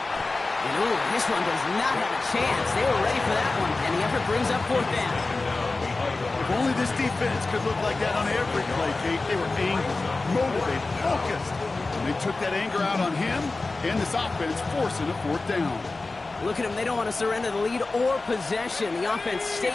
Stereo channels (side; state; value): right; quieter; 3.4 dB